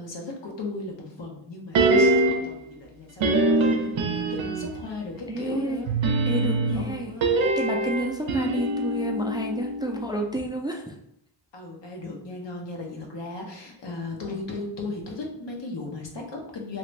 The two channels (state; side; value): normal; both; correlation 0.11